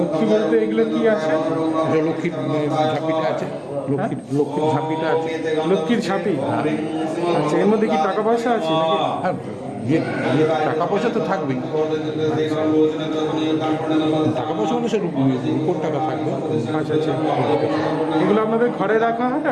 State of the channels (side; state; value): both; identical; correlation 1.00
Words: লক্ষ্মী বলতে এগুলো কি আছে? এটা লক্ষ্মীর ঝাঁপিটা আছে, লক্ষ্মীর ঝাঁপিটা আছে। লক্ষ্মীর ঝাঁপি? আচ্ছা, এর মধ্যে কি টাকা পয়সা আছে নাকি? হ্যাঁ, টাকা পয়সা তো থাকবেই। টাকা পয়সা মানে সে রূপোর টাকা থাকবে। আচ্ছা, আচ্ছা, এগুলো আপনাদের ঘরে রাখা হয়